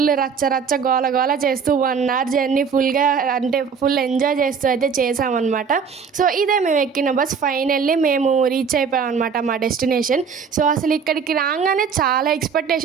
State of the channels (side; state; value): left; quieter; 6.2 dB